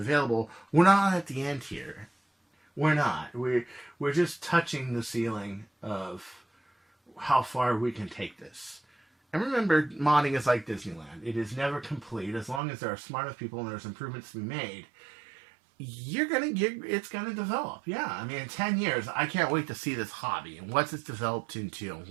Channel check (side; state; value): left; drops out; at 12.6 s